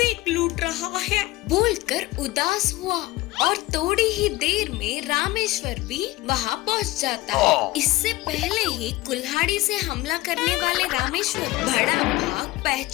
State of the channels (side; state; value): right; quieter; 18.9 dB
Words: लूट रहा है बोलकर उदास हुआ। और थोड़ी ही देर में रामेश्वर भी वहाँ पहुँच जाता है। इससे पहले ही कुल्हाड़ी से हमला करने वाले रामेश्वर बड़ा बाघ